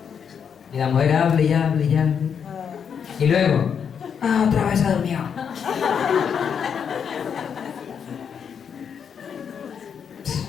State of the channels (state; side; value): quieter; right; 7.3 dB